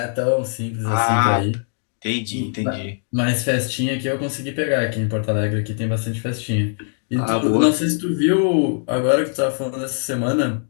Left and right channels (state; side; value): silent; right; digital silence